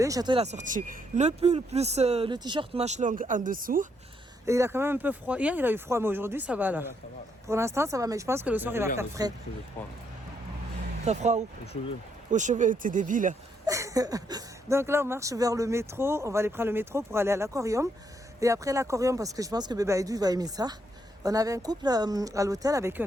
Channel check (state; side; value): normal; both; correlation 0.75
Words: Château, il a sorti le pull plus le t-shirt manche longue en dessous. Et il a quand même un peu froid. Hier, il a eu froid, mais aujourd'hui, ça va là. Ça va. Pour l'instant, ça va, mais je pense que le soir, il va faire frais. T'as froid où? Aux cheveux. Aux cheveux, t'es débile. Donc là, on marche vers le métro. On va aller prendre le métro pour aller à l'aquarium. Et après l'aquarium, parce que je pense que Bébé Aïdou, il va aimer ça. On avait un couple à l'hôtel avec qui